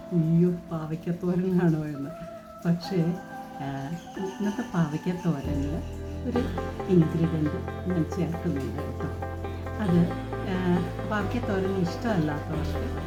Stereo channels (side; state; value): both; identical; correlation 1.00